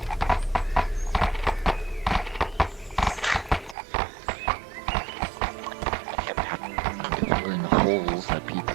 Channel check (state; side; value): drops out; left; at 3.8 s